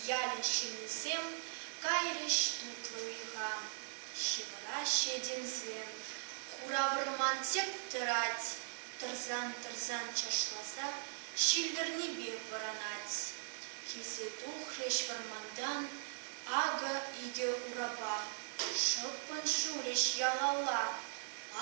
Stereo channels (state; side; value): silent; left; digital silence